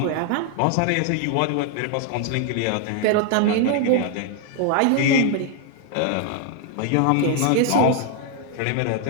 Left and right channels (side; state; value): both; different; correlation 0.00